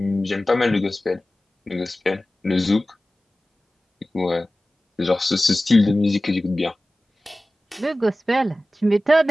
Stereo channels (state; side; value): normal; both; correlation 0.96